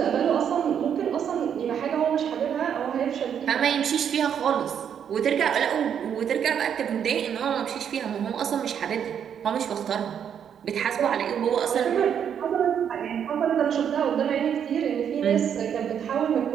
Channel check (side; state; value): left; quieter; 8.4 dB